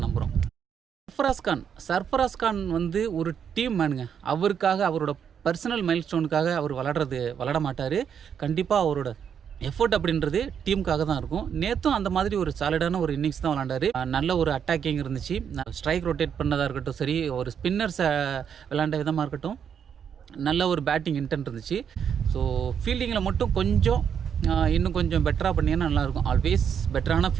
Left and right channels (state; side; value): quieter; left; 7.8 dB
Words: நம்புகிறோம். சர்ஃபராஸ் கான் வந்து ஒரு டீம் மேனுங்க. அவரோட பர்சனல் மைல் ஸ்டோனுக்காக அவர் விளாட மாட்டார். கண்டிப்பாக அவரோட எஃபோர்ட் அப்படின்றது டீமுக்காக தான் இருக்கும். நேற்றும் அந்த மாதிரி ஒரு சாலிடான ஒரு இன்னிங்ஸ் தான் விளாண்டாரு. நல்ல ஒரு அட்டாக்கிங் இருந்துச்சு. ஸ்ட்ரைக் ரொட்டேட் பண்ணதாக இருக்கட்டும், சரி ஒரு ஸ்பின்னர்ஸை விளாண்ட விதமாக இருக்கட்டும், நல்ல ஒரு பேட்டிங் இன்டென்ட் இருந்துச்சு. ஸோ ஃபீல்டிங்கில் மட்டும் இன்னும் கொஞ்சம் பெட்டராக பண்ணிங்கன்னா நல்லாயிருக்கும். ஆல்வேஸ் பெட்டரான